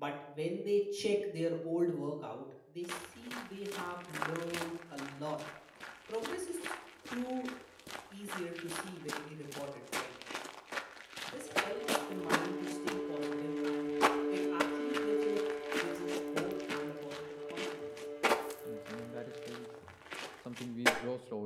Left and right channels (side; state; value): both; identical; correlation 1.00